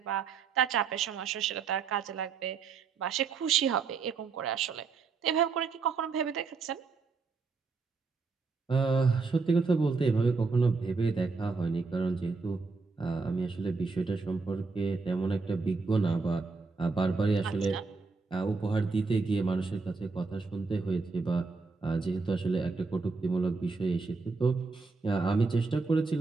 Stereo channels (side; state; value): left; quieter; 4.5 dB